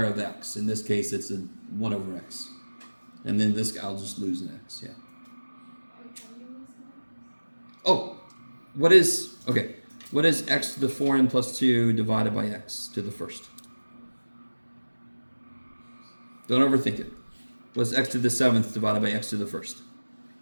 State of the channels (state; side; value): inverted; both; correlation -1.00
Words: of x. In this case, it's a 1 over x. And then I'll just lose an x, yeah. Oh, what is x to the 4n plus 2 divided by x to the first? Don't overthink it. What's x to the 7th divided by x to the first?